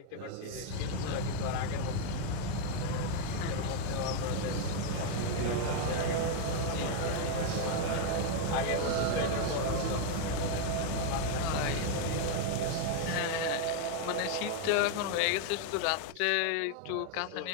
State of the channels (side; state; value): both; different; correlation 0.00